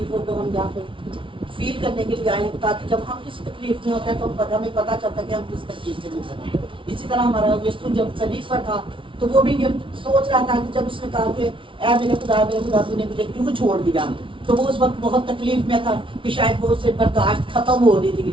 کو ہم یہاں پہ فیل کرنے کے لیے آئے ہیں، تاکہ جب ہم کسی تکلیف میں ہوتے ہیں تو ہمیں پتہ چلتا ہے کہ ہم کس تکلیف سے گزر رہے ہیں۔ اسی طرح ہمارا یسوع جب صلیب پر تھا تو وہ بھی یہ سوچ رہا تھا کہ جب اس نے کہا کہ اے میرے خدا تو نے مجھے کیوں چھوڑ دیا، تو وہ اس وقت بہت تکلیف میں تھا کہ شاید وہ اس سے برداشت ختم ہو رہی تھی،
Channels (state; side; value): late; left; 0.25 ms